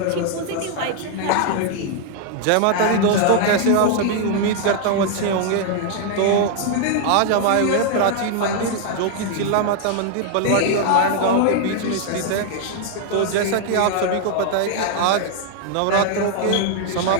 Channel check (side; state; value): both; different; correlation 0.00